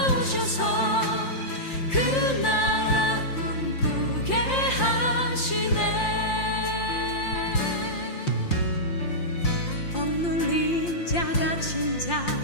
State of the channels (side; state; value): right; late; 5.7 ms